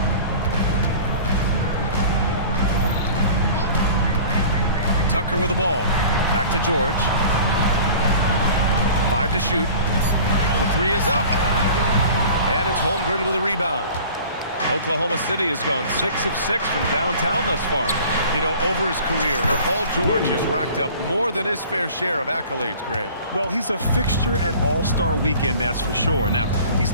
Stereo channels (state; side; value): inverted; both; correlation -0.44